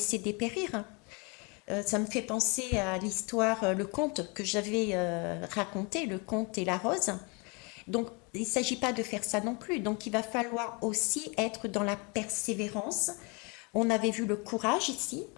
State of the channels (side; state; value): right; quieter; 31.0 dB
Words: dépérir. Ça me fait penser à l'histoire, le conte que j'avais raconté, le conte et la rose. Donc, il ne s'agit pas de faire ça non plus. Donc, il va falloir aussi être dans la persévérance, On avait vu le courage ici.